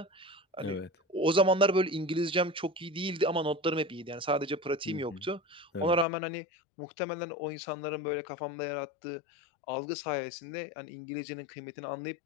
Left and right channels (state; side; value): drops out; right; at 6.1 s